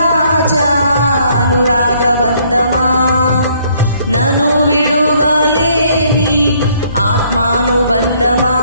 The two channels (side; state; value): both; inverted; correlation -0.65